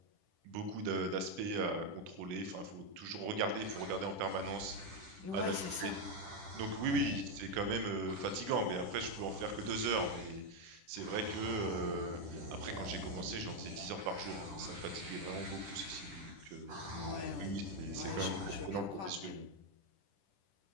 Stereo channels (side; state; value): left; late; 10 ms